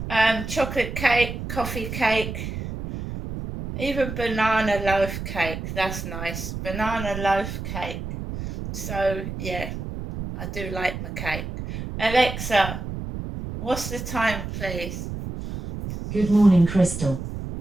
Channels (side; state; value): right; noise; rumble, 7 dB below the sound